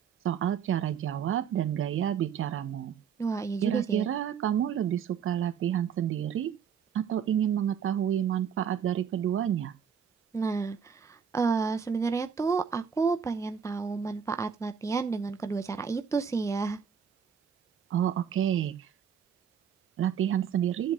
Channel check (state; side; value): quieter; left; 7.5 dB